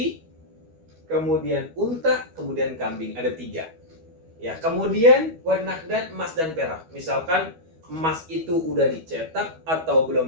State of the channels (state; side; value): late; left; 12 ms